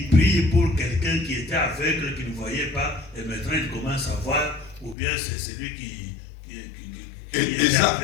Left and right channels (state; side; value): drops out; right; at 5.0 s